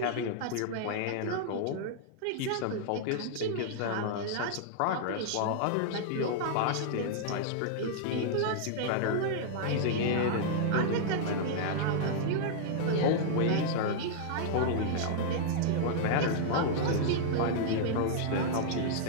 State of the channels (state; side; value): different; both; correlation -0.01